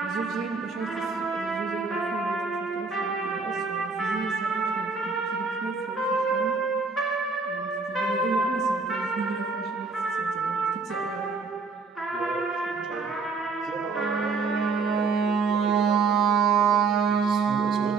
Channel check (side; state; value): left; quieter; 4.6 dB